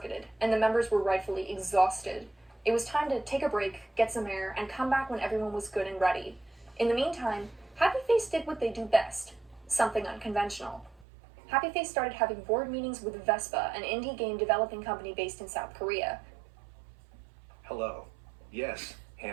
and the members were rightfully exhausted. It was time to take a break, get some air, and come back when everyone was good and ready. In the meantime, Happy Face did what they do best, something unconventional. Happy Face started having board meetings with Vespa, an indie game developing company based in South Korea. Hello. Yes,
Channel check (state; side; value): drops out; left; at 11.1 s